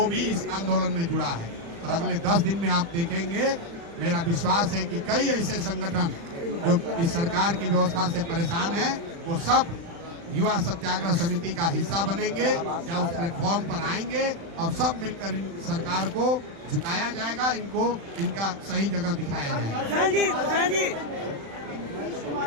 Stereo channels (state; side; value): late; left; 35 ms